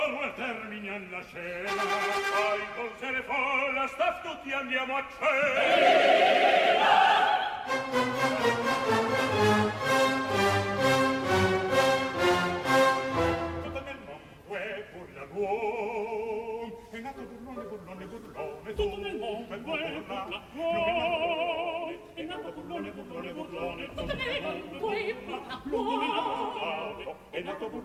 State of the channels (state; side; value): identical; both; correlation 1.00